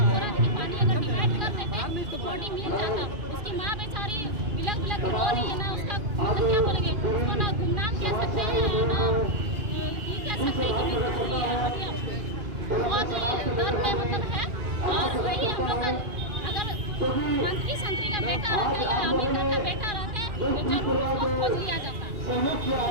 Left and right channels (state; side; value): late; left; 2.4 ms